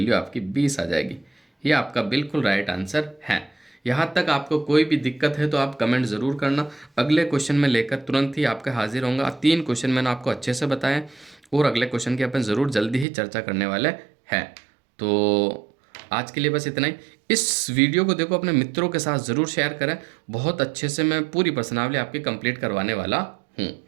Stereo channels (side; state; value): left; drops out; at 13.1 s